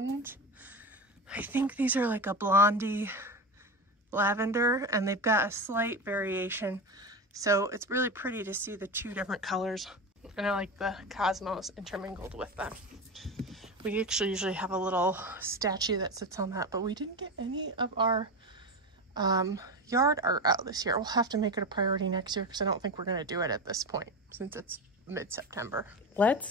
I think these are like a blondie lavender, and they've got a slight variation. So it's really pretty to see the 2 different colors. And I like the cosmos intermingled with them. We actually usually have a little statue that sits on that, but we didn't get any of our yard art out this year. We'll have to make it a priority next year because I don't think we're going to do it at this point since it's mid-September.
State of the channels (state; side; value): normal; both; correlation 0.22